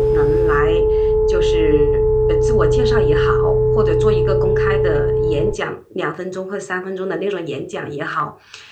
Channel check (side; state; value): both; identical; correlation 1.00